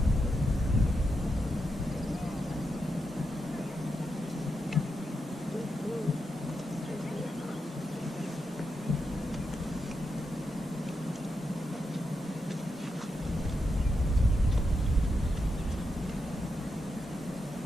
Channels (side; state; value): both; normal; correlation 0.85